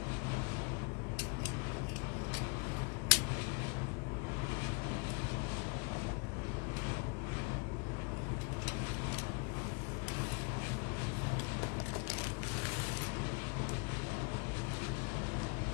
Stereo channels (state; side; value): quieter; right; 34.2 dB